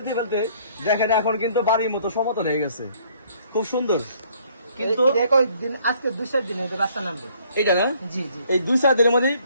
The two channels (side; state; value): both; inverted; correlation -0.62